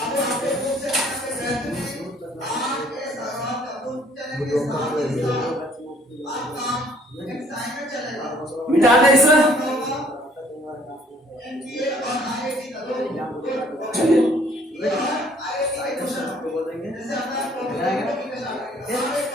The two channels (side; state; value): both; normal; correlation 0.59